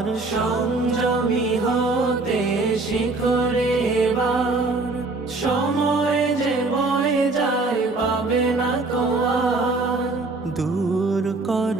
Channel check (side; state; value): left; quieter; 3.4 dB